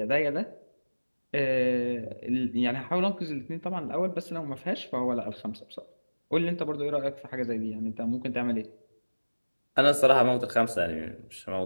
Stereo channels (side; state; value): both; inverted; correlation -1.00